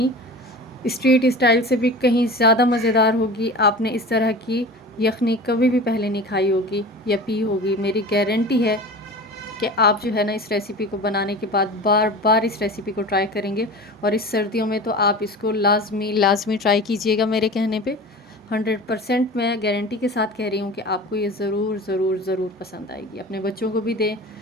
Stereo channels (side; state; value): both; normal; correlation 0.35